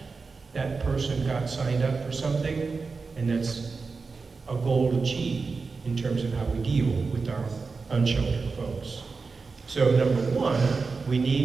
That person got signed up for something, and that's a goal achieved in terms of how we deal with our unsheltered folks. So number one, we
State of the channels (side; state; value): left; quieter; 4.5 dB